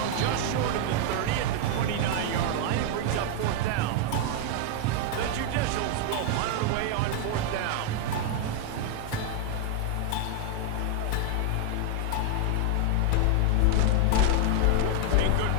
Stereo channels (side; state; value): both; different; correlation 0.00